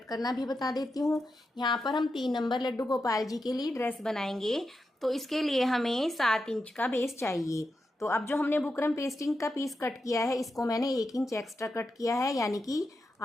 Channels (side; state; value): both; normal; correlation 0.88